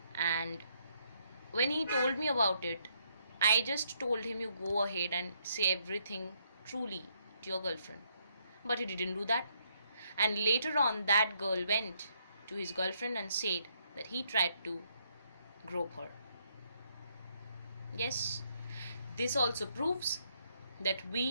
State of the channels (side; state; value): both; inverted; correlation -0.74